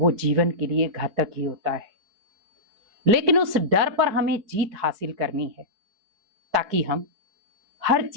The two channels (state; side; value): late; left; 4.7 ms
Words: जीवन के लिए घातक ही होता है। लेकिन उस डर पर हमें जीत हासिल करनी है ताकि हम हर